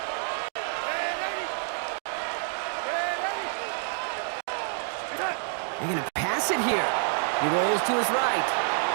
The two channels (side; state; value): left; silent; digital silence